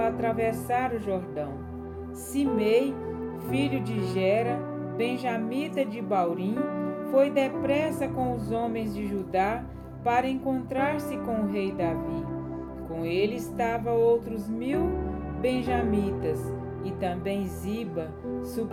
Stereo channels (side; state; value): both; identical; correlation 1.00